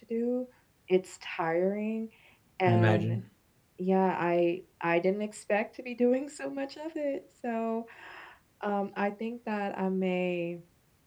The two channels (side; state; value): both; identical; correlation 1.00